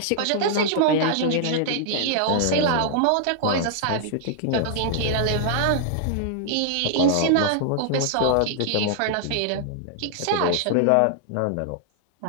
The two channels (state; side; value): different; both; correlation -0.01